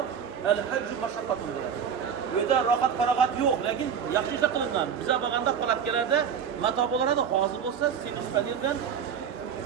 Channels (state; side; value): quieter; left; 7.6 dB